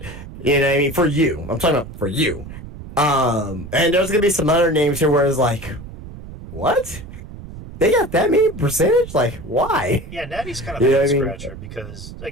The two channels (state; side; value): noise; right; rumble, 13 dB below the sound